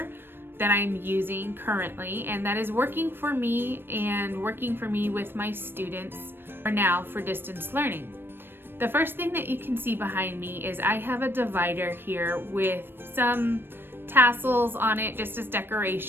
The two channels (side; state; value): left; late; 0.10 ms